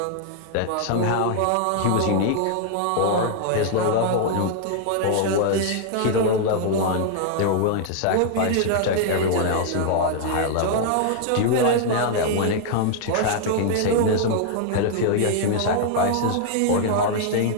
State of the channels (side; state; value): both; different; correlation 0.00